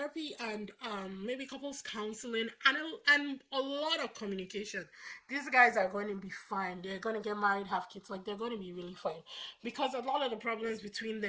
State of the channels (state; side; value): identical; both; correlation 1.00